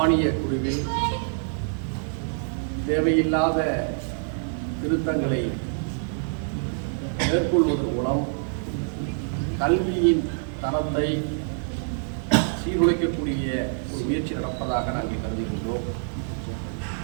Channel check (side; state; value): left; silent; 61 dB below the other